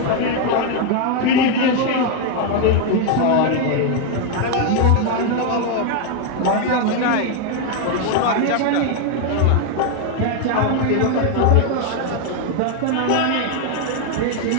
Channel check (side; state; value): both; different; correlation 0.01